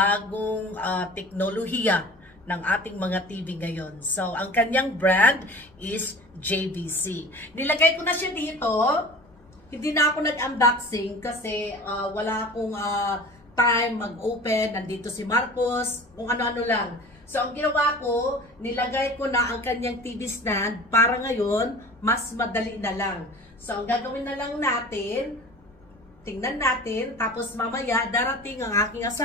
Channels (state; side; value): noise; left; rumble, 29 dB below the sound